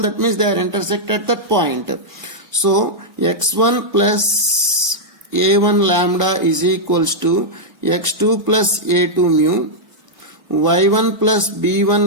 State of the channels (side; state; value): left; late; 1.3 ms